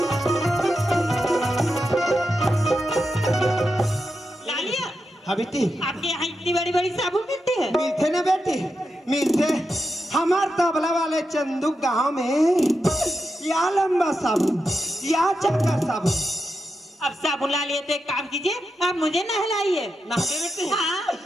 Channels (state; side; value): normal; both; correlation 0.87